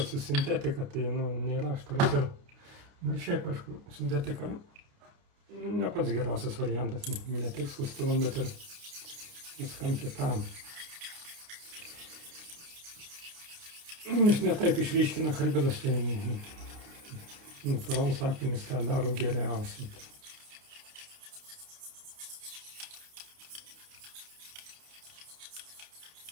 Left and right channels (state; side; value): late; left; 29 ms